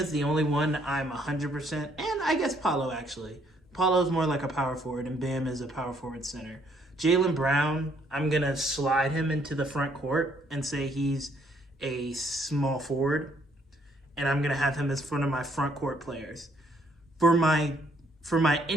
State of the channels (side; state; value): both; normal; correlation 0.67